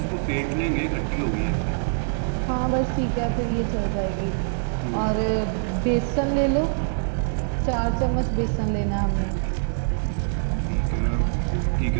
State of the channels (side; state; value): left; silent; 62 dB below the other